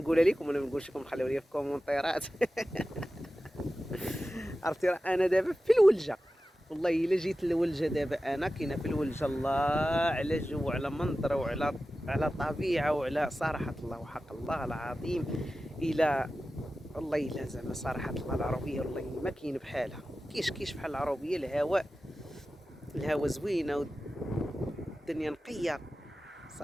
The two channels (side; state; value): both; normal; correlation 0.94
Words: لكم ولا ما نقولش لكم؟ خليو لي في الكومونتيرات. عرفتي راه انا دابا في الولجه، والله الا جيت للولجه دابا انا كاينه في الولجه. الله على جو وعلى منظر وعلى طبيعه وعلى صراحه الله وحق الله العظيم. الى والله الا زعما صراحه الله العربيه والله ما كاين بحالها. كيش بحال العربيه. الهواء زوينه والدنيا نقيه